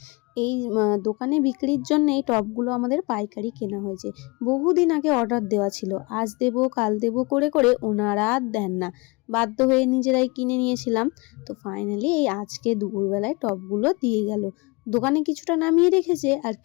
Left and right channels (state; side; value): quieter; right; 26.8 dB